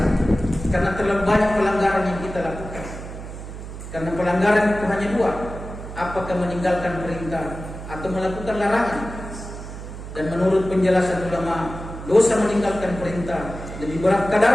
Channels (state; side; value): noise; right; hum, 10 dB below the sound